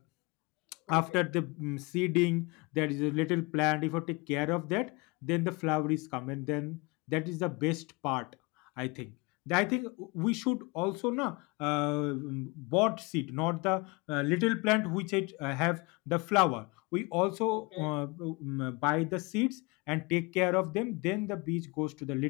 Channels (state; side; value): quieter; right; 26.9 dB